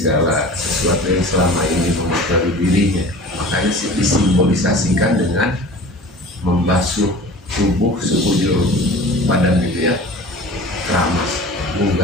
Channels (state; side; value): normal; both; correlation 0.40